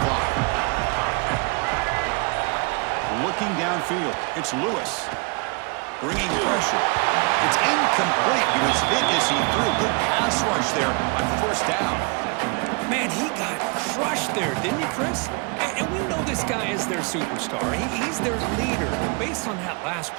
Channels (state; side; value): quieter; left; 32.1 dB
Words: clock. Looking downfield, it's Lewis. Bringing pressure. It's incomplete. He was hit as he threw a good pass rush there on 1st down. Man, he got crushed there, didn't you, Chris? And we know this guy is their superstar. He's their leader. But based on that last